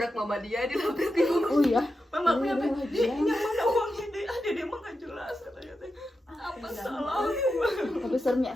mama dia, dilabrak ibu. Oh iya. Mama aku Iya, nyampe, iya. "Dek, yang mana uangnya deh? Dia mah nggak jelas," katanya teh. Apa salah? Tapi serem ya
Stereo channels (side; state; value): both; normal; correlation 0.89